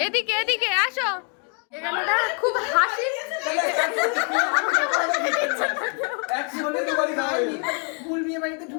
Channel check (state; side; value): quieter; right; 39.2 dB